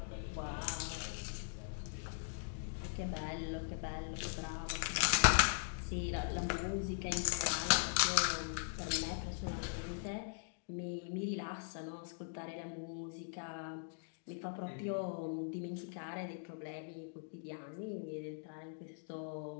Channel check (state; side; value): silent; right; digital silence